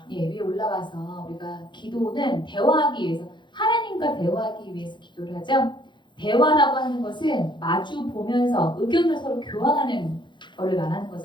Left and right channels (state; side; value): late; right; 0.23 ms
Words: 예, 위에 올라가서 우리가 기도는 대화하기 위해서 하나님과 대화하기 위해서 기도를 하죠. 대화라고 하는 것은 마주 보면서 의견을 서로 교환하는 것을 말하는